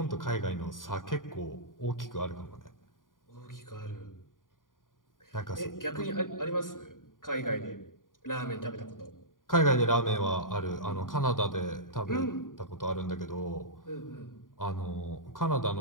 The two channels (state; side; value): late; right; 0.90 ms